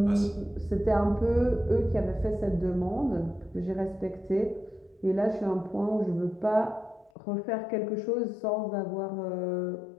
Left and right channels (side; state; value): right; drops out; at 7.1 s